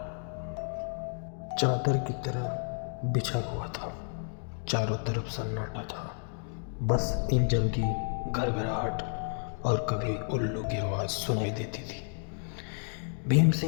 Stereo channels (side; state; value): right; silent; 55 dB below the other